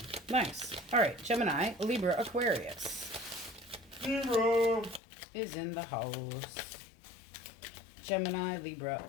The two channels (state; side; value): drops out; right; at 5.0 s